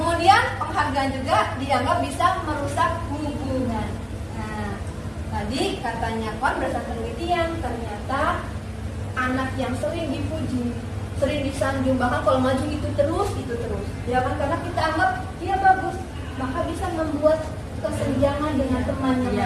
penghargaan juga dianggap bisa merusak hubungan. Nah, tadi katanya berdasarkan penelitian ternyata anak yang sering dipuji, sering disanjung, bahkan kalau maju itu terus, ya kan, karena kita anggap dia bagus, maka bisa membuat kesenjangan dengan temannya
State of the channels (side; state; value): both; identical; correlation 1.00